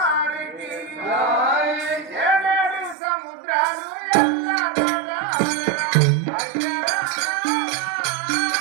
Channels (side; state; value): left; drops out; at 3.0 s